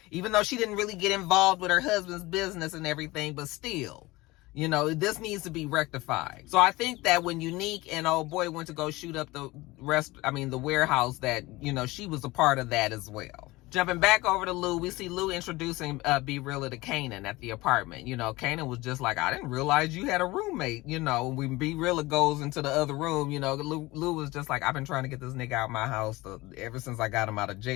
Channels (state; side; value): quieter; right; 20.7 dB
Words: even though she didn't really get involved with her husband's business and everything, but still, this needs to be rectified. So I think that when Unique and old boy went to go shoot up the warehouse, that, she was a part of that as well. Jumping back over to Lou, we see Lou introducing Be Realer to Kanan at the apartment. Kanan was just like, I didn't realize you had a roommate. When Be Realer goes into the other room, Lou was just like, I've been trying to get this nigga out of my house ever since I got him out of